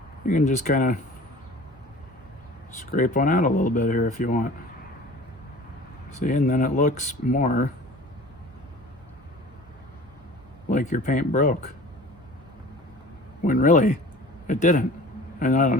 You can just kind of scrape one out a little bit here if you want. See, and then it looks more like your paint broke, when really it didn't. And I don't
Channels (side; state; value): both; normal; correlation 0.43